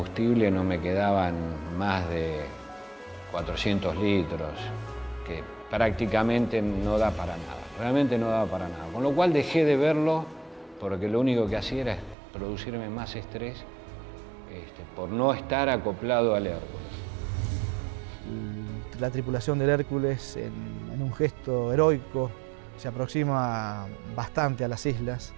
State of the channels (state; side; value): drops out; left; at 12.2 s